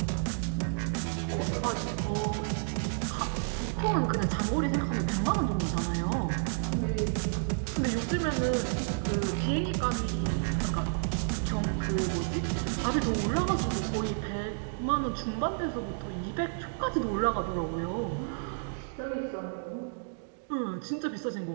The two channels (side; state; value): left; silent; digital silence